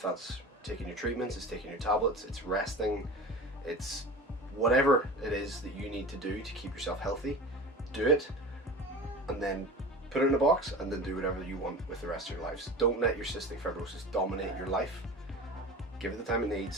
that's taking your treatments, it's taking your tablets, it's resting, it's whatever it is that you need to do to keep yourself healthy, do it, and then put it in a box, and then do whatever you want with the rest of your lives. Don't let your cystic fibrosis dominate your life. Give it the time it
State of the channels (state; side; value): normal; both; correlation 0.34